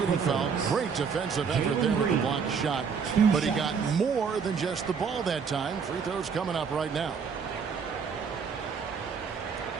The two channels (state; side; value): quieter; left; 6.1 dB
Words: foul. Great defensive effort there with the blocked shot. But he got more than just the ball that time. Free throws coming up right now.